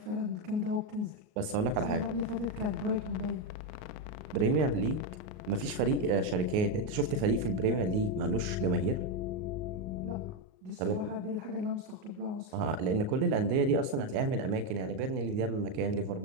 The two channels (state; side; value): late; left; 38 ms